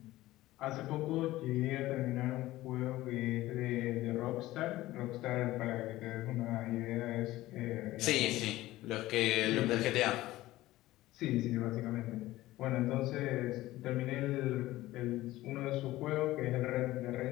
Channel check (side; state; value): right; quieter; 16.8 dB